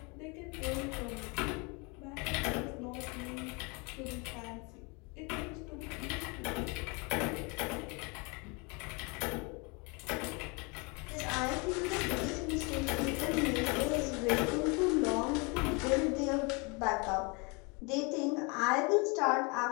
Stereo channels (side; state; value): right; quieter; 30.2 dB